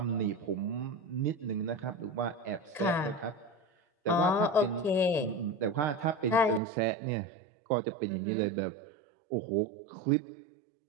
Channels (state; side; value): drops out; left; at 6.6 s